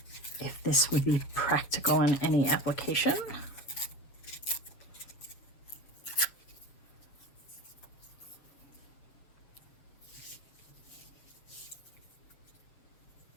if this would be practical in any application.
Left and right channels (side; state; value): right; late; 7.4 ms